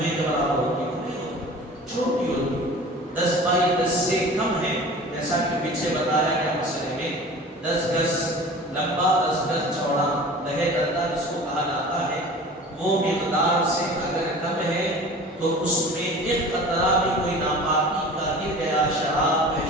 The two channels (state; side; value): normal; both; correlation 0.40